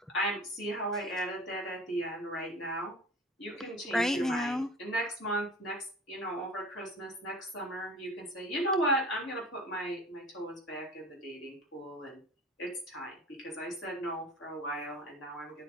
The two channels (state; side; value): normal; both; correlation 0.39